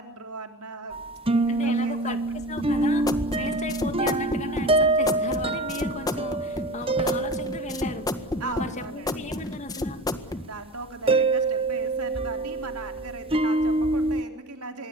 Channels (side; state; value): both; normal; correlation 0.34